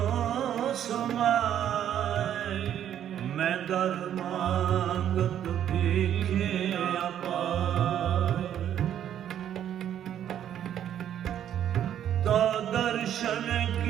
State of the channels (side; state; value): left; quieter; 10.3 dB